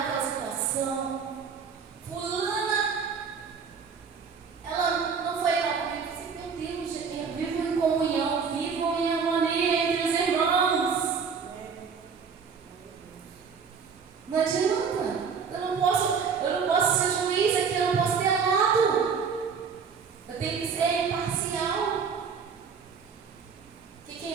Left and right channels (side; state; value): left; quieter; 6.0 dB